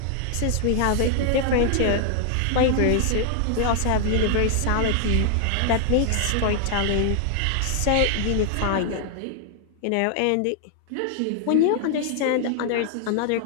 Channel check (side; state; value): both; different; correlation 0.00